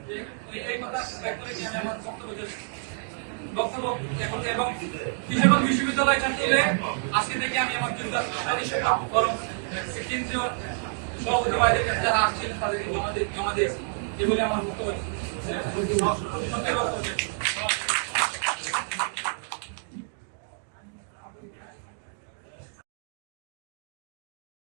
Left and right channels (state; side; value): silent; left; 59 dB below the other